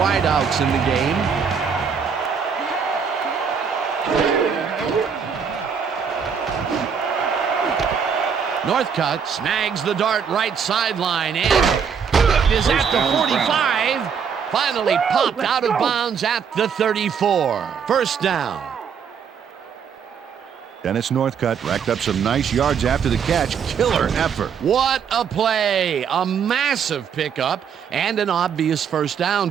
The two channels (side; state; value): left; quieter; 6.9 dB